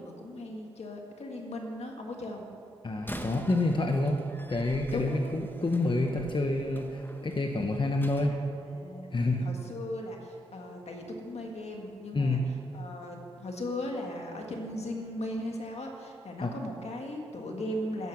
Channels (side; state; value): both; normal; correlation 0.80